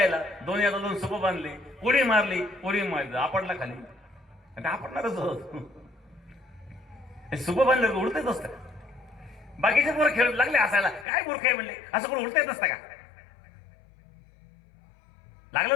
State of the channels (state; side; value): drops out; right; at 11.1 s